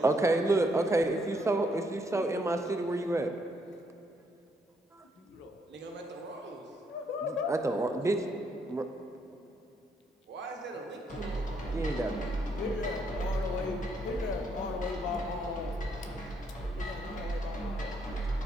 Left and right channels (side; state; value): both; normal; correlation 0.73